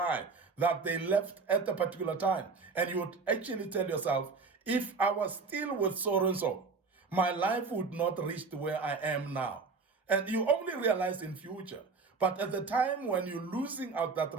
that they left at a particular time. And you would actually tell yourself, if I was still with so and so, my life would not reach to where I am now. And you only realize in future. But at the time when you're losing out that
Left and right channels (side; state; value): left; quieter; 4.5 dB